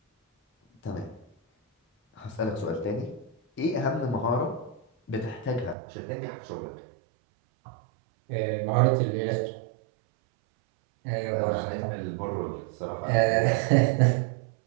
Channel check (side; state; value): left; drops out; at 5.8 s